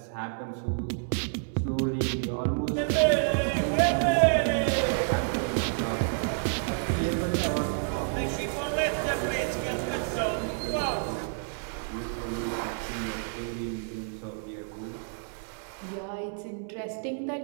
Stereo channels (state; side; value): silent; left; 58 dB below the other